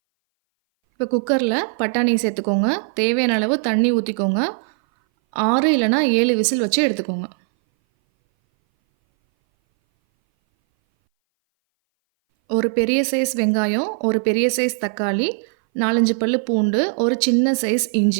இப்போ குக்கரில் பட்டாணியை சேர்த்துக்கோங்க. தேவையான அளவு தண்ணி ஊற்றிக்கோங்க. 6 இல்லைனா 7 விசில் வச்சு எடுத்துக்கோங்க. ஒரு பெரிய சைஸ் வெங்காயம், ஒரு பெரிய சைஸ் தக்காளி, 4, 5 பல்லு பூண்டு, ஒரு சின்ன சைஸ்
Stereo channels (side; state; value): left; silent; 61 dB below the other